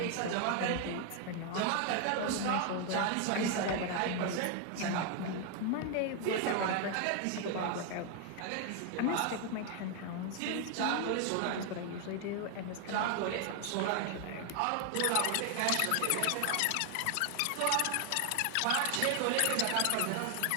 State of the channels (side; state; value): both; different; correlation 0.01